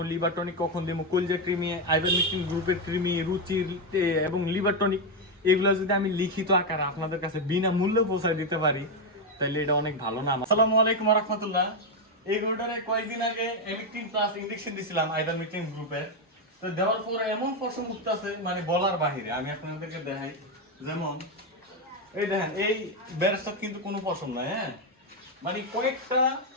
লিভার টনিক কখন দেবো, কলজা কৃমি, আইভারমেকটিন গ্রুপের কৃমি, রুচির এবং লিভার টনিক, এগুলো যদি আমি লিখিত আকারে আপনাদের কাছে বিনামূল্যে পৌঁছায় দিতে পারি তাহলে এটা অনেক ভালো না। আসসালামু আলাইকুম ওয়া রাহমাতুল্লাহ। এই গরুটারে কয়েকদিন আগে এমিকটিন প্লাস ইনজেকশন দিছিলাম আইভারমেকটিন গ্রুপের। তো দেওয়ার পরে এমন পশম উঠতেছে মানে বলার বাহিরে। আমি আপনাদেরকে দেখাই, যেমন এই দেখেন, এই বেরেস্তার কিন্তু কোনো পশম নাই। হ্যাঁ, মানে কয়েকটা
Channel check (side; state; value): both; normal; correlation 0.05